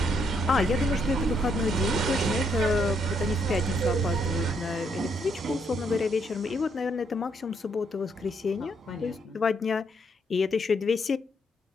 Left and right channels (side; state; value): both; normal; correlation 0.74